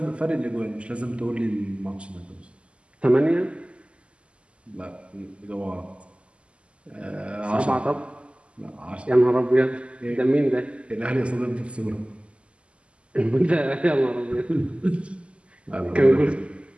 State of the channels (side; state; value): left; late; 0.055 ms